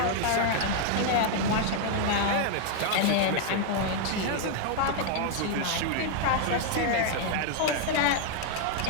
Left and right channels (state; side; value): different; both; correlation 0.00